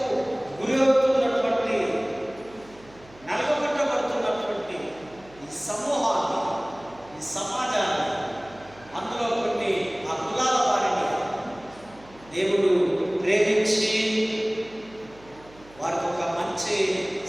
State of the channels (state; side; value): noise; right; hum, 24 dB below the sound